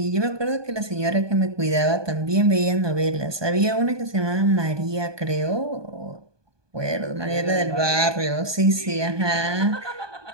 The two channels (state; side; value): late; left; 1.2 ms